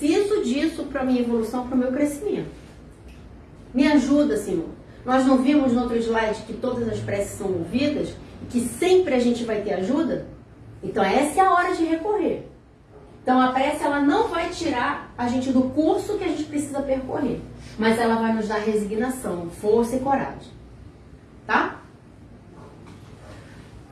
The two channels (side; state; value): both; identical; correlation 1.00